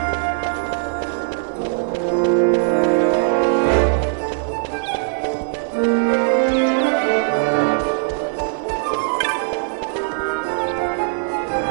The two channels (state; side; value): silent; left; digital silence